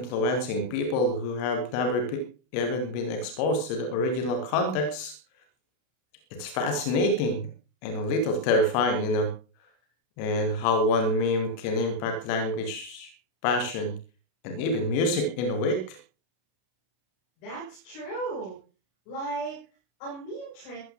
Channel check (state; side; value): late; right; 32 ms